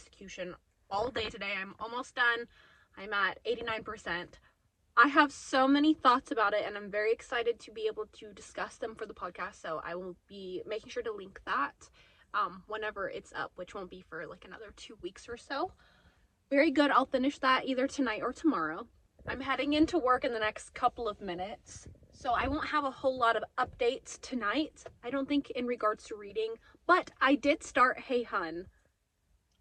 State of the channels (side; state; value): both; identical; correlation 1.00